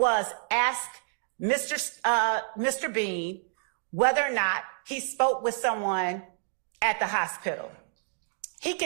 ask Mr. Bean whether or not he spoke with someone at the hospital. He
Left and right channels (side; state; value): left; silent; digital silence